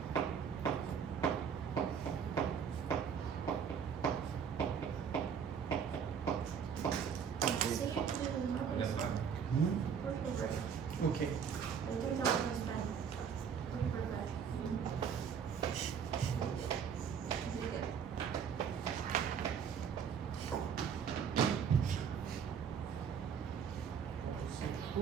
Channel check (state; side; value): quieter; left; 7.2 dB